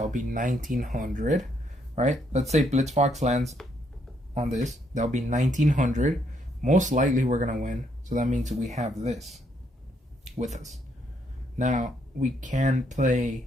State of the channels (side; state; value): both; normal; correlation 0.73